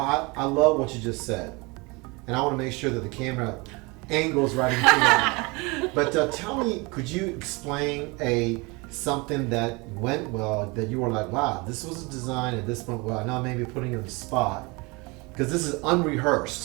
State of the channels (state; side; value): quieter; left; 26.7 dB